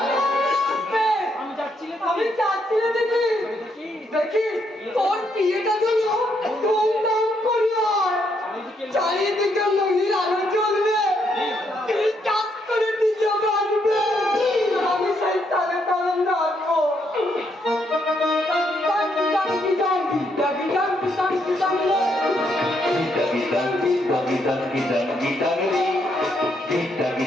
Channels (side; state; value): both; normal; correlation 0.75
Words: আমি যাচ্ছি রে দিদি। দেখি তোর বিয়েটা যেন ধুমধাম করে হয়, চারিদিকে মহির আলো জ্বলবে, কাজ করে নিজে বাঁচবে, আমি সেই তালে তালে নাচবো।